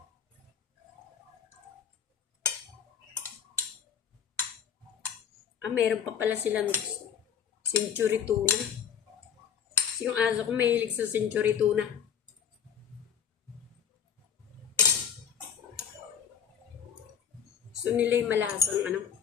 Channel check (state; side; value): quieter; right; 8.0 dB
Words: Meron pa pala silang century tuna. Kasi yung aso ko mahilig sa century tuna. So nila yung malasang